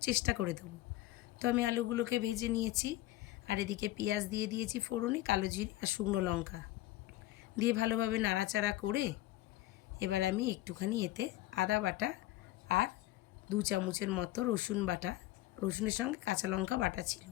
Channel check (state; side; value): quieter; right; 16.3 dB